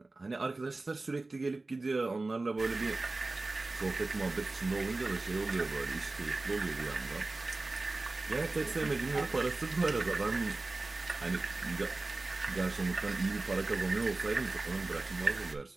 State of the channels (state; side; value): quieter; left; 3.2 dB